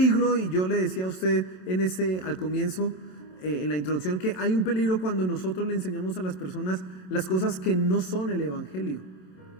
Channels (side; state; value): right; late; 27 ms